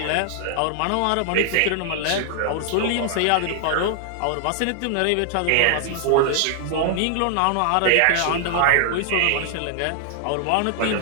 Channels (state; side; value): different; both; correlation 0.00